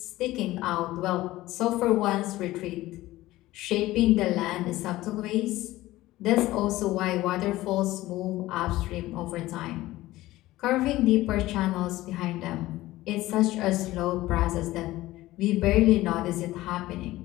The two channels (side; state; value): right; quieter; 17.0 dB